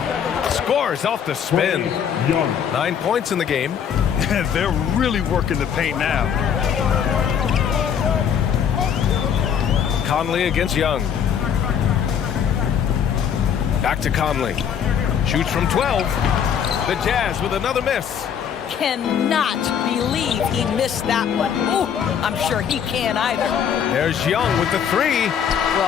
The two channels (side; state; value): right; quieter; 8.1 dB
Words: Scores off the spin. 9 points in the game. They're really working the paint now. Conley against Young. Back to Conley. Shoots from 12. The Jazz with another miss. Cannot believe he missed that one. Ooh, I'm sure he can't either. There's Young with the 3.